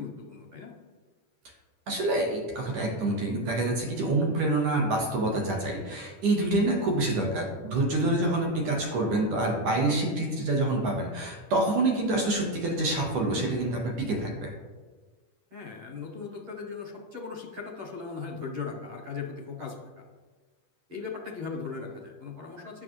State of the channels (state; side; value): late; left; 10 ms